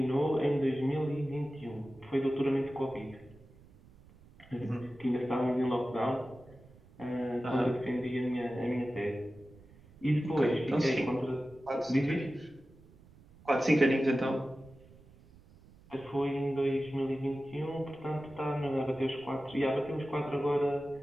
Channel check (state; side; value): noise; right; rumble, 24 dB below the sound